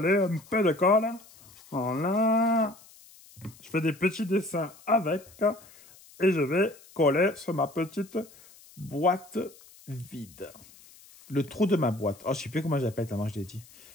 un peu de colle. Voilà. Je fais des petits dessins avec. Et je vais coller sur ma petite boîte vide. Le trou de ma boîte. Oh, je ne sais plus comment j'appelle, tellement je l'ai dit.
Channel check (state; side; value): noise; left; hiss, 24 dB below the sound